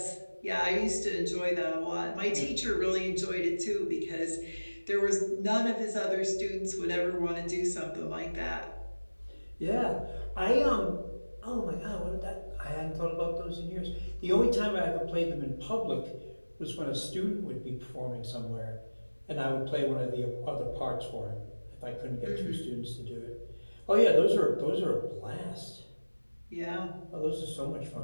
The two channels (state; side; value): inverted; both; correlation -1.00